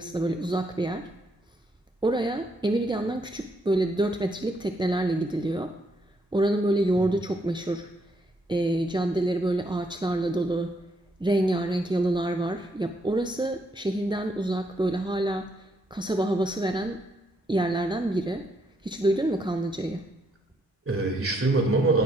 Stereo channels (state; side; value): normal; both; correlation 0.74